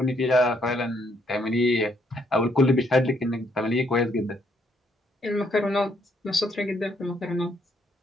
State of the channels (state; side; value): normal; both; correlation 0.71